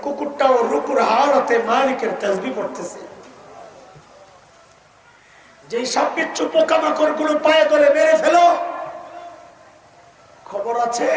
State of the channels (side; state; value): both; identical; correlation 1.00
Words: কুকুরটাও রুকুর হালতে মালিকের তাসবিহ পড়তেছে। যে সাপবিচ্ছু পোকামাকড় গুলো পায়ে ধরে মেরে ফেলো, খবর আছে